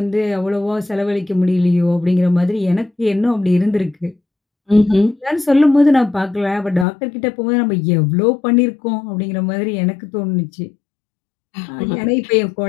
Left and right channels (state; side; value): drops out; right; at 6.9 s